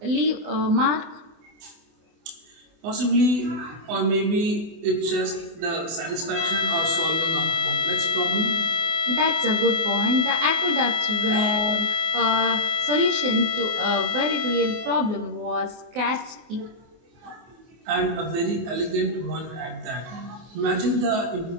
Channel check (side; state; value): left; late; 24 ms